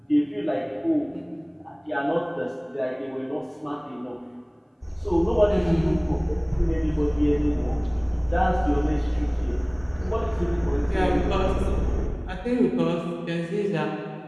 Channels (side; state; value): both; identical; correlation 1.00